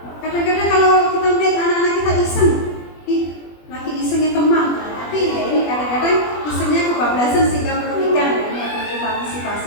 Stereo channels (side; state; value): right; late; 20 ms